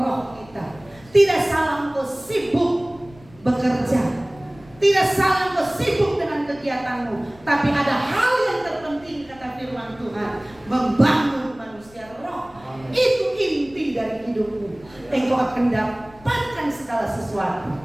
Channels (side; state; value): left; noise; rumble, 24 dB below the sound